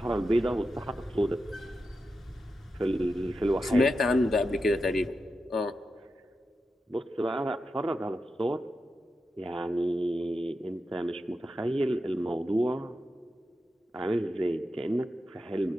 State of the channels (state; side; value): normal; both; correlation 0.89